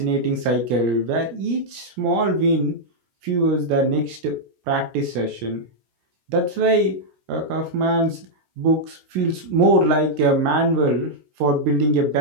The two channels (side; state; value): left; late; 16 ms